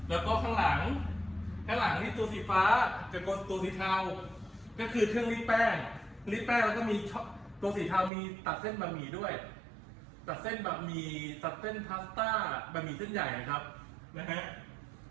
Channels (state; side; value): drops out; left; at 8.1 s